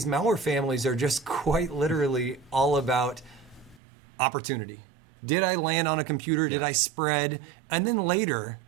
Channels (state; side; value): drops out; left; at 3.8 s